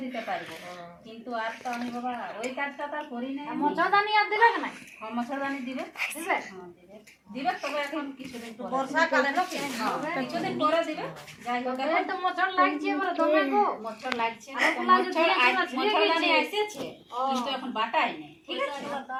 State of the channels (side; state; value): both; identical; correlation 1.00